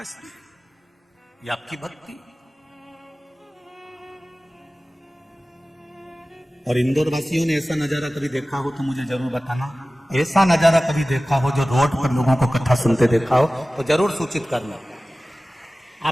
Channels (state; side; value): normal; both; correlation 0.97